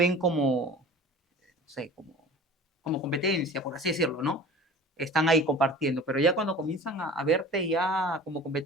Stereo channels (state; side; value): normal; both; correlation 0.41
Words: como, no sé, como competencia, por así decirlo, ¿no? Están ahí compartiendo, pero ya cuando comienzan a verte ya como